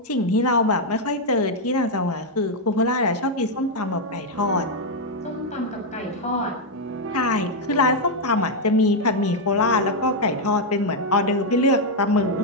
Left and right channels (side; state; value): both; normal; correlation 0.00